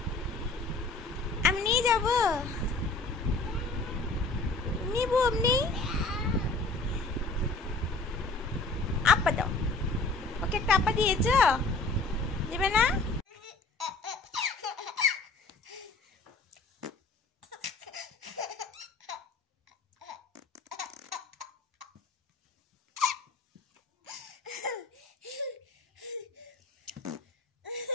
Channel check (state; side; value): quieter; right; 3.4 dB